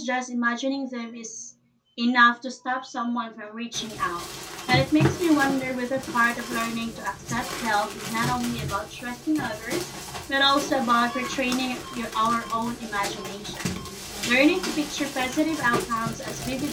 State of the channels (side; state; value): both; identical; correlation 1.00